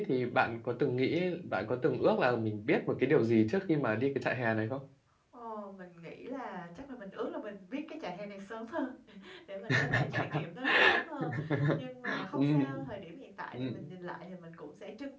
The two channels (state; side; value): identical; both; correlation 1.00